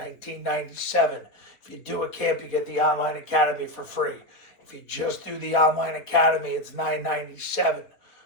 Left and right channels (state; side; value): late; right; 4.2 ms